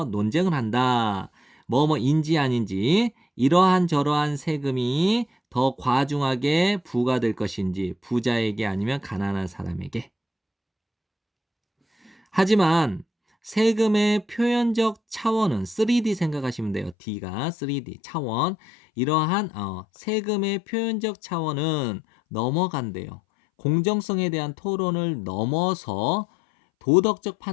논쟁을 한다. 뭐뭐인지 아닌지, 이러한 저러한 세금이 더 과중하게 부과될 것인지, 부자에게 아니면 가난한 사람에게. 하지만 세금의 표현적 차원은 3D 생각하시면 돼요. D가 3D 차원. 이러한 세금의 표현적 차원은 넘어간대요. 공정성에 대한 토론을 넘어서 도덕적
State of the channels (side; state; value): right; drops out; at 16.9 s